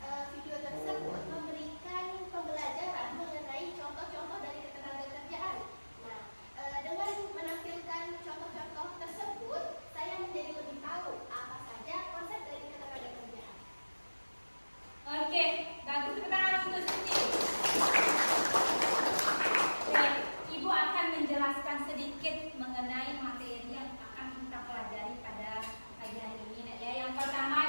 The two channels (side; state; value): both; inverted; correlation -1.00